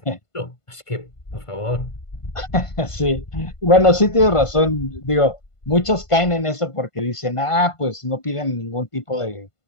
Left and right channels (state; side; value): late; right; 1.5 ms